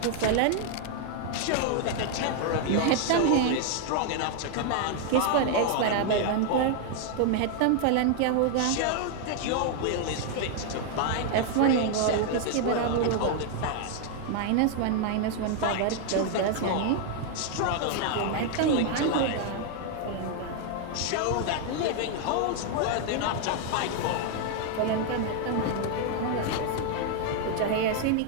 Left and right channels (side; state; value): both; different; correlation 0.00